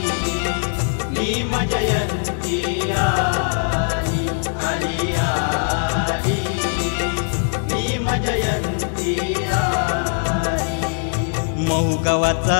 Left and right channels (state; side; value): silent; right; digital silence